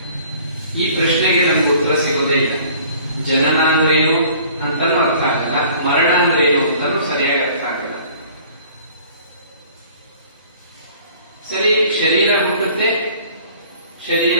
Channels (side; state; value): both; inverted; correlation -0.52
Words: ಈ ಪ್ರಶ್ನೆಗೆ ನಮ್ಗೆ ಉತ್ತರ ಸಿಗೋದೇ ಇಲ್ಲ. ಜನನ ಅಂದ್ರೇನು ಅಂತಾನು ಅರ್ಥ ಆಗಲ್ಲ, ಮರಣ ಅಂದ್ರೇನು ಅಂತಾನು ಸರಿಯಾಗಿ ಅರ್ಥ ಆಗಲ್ಲ. ಸರಿ, ಶರೀರ ಹುಟ್ಟುತ್ತೆ, ಶರೀರ